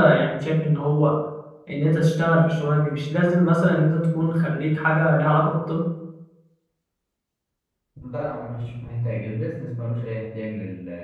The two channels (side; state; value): both; identical; correlation 1.00